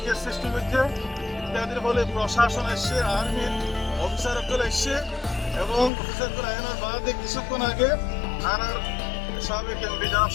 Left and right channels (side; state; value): right; drops out; at 5.9 s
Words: সৃষ্টি করছে ইত্যাদির ফলে প্রশাসন এসছে, আর্মির অফিসারগুলো এসছে এবং অফিসারগুলো আইনের বাদে কিছুক্ষণ আগে আর সাবেক এমপি জনাব